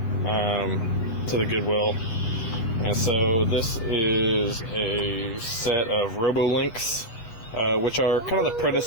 the Goodwill. And so this is a set of Robolinks, which are kind of the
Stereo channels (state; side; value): late; right; 8.6 ms